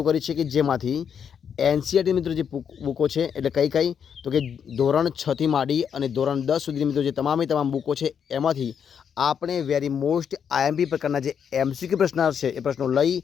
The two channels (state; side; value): quieter; right; 7.6 dB